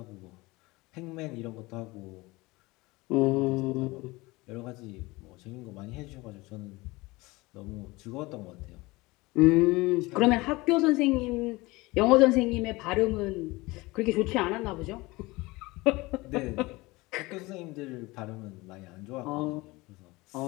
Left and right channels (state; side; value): quieter; right; 22.1 dB